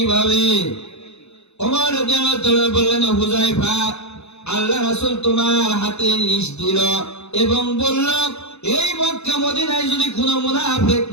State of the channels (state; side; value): late; right; 0.81 ms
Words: উমর রাদিয়াল্লাহু তাআলা বললেন, হুযায়ফা, আল্লাহ রাসূল তোমার হাতে লিস্ট দিল এবং বলল, এই মক্কা মদিনায় যদি কোনো মুনাফিক